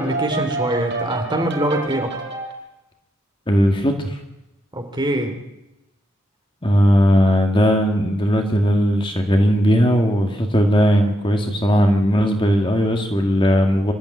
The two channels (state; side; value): normal; both; correlation 0.82